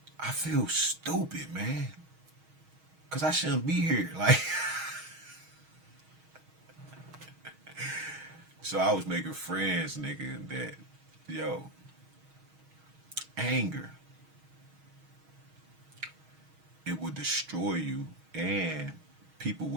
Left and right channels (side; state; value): left; late; 6.3 ms